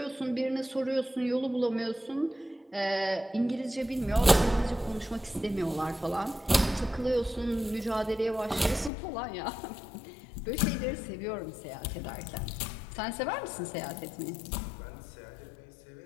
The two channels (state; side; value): drops out; right; at 8.9 s